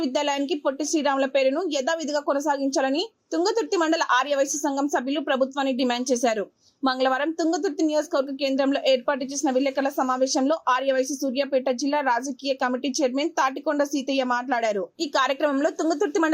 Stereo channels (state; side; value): identical; both; correlation 1.00